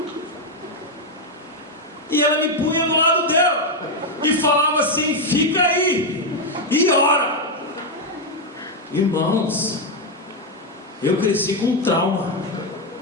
E ela me punha do lado dela e falava assim: fica aí e ora. Irmãos, eu cresci com trauma.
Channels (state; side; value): normal; both; correlation 0.04